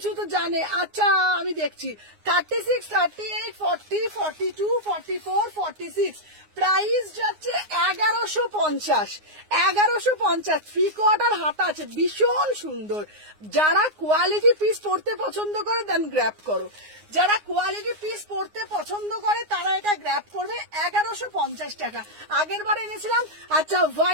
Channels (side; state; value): left; late; 9.6 ms